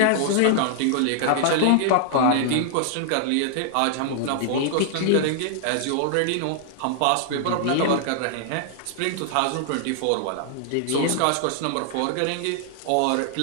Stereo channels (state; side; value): different; both; correlation -0.01